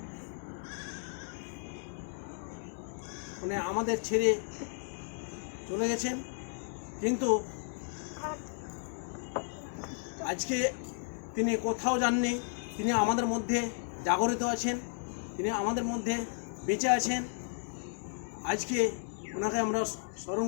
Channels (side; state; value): right; silent; 55 dB below the other